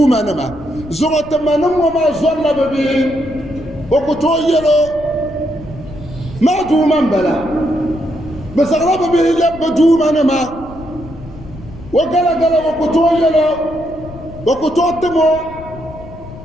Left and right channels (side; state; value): left; noise; rumble, 16 dB below the sound